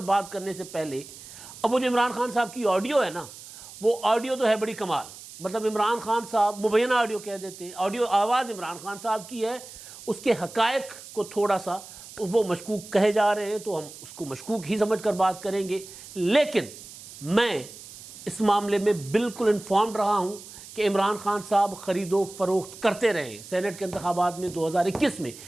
بات کرنے سے پہلے اب وہ جو عمران خان صاحب کی آڈیو ہے نا، وہ آڈیو تو ہے بڑی کمال، مطلب عمران خان صاحب مبینہ آڈیو کہہ دیتے ہیں، آڈیو آواز عمران خان صاحب کی ہے، اس کے حقائق کو تھوڑا سا وہ مشکوک کہے جا رہے ہیں تو ہم اس کو مشکوک ہی سمجھ کر بات کریں گے۔ لیکن میں اس معاملے میں بالکل انفارمڈ رہا ہوں کہ عمران خان صاحب خرید و فروخت کرتے رہے ہیں سینٹ کے انتخابات میں 2021 میں،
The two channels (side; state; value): right; noise; hiss, 16 dB below the sound